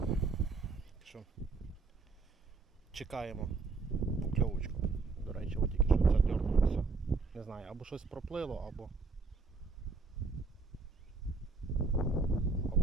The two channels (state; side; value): quieter; left; 4.2 dB